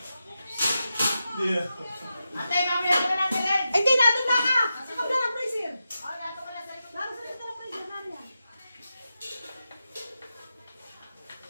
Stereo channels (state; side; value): inverted; both; correlation -0.89